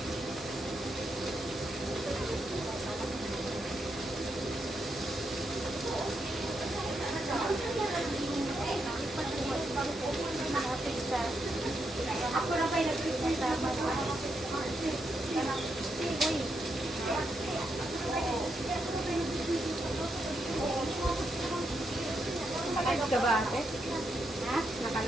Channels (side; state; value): both; normal; correlation 0.82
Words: Ako na kayo nag-presenta. Naka-live ka ba ate? Ha?